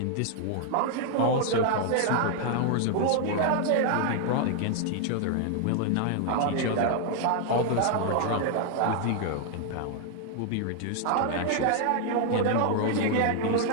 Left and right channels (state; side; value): different; both; correlation 0.00